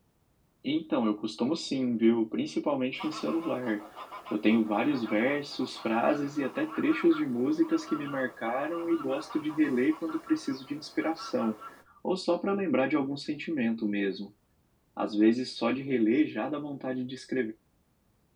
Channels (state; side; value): identical; both; correlation 1.00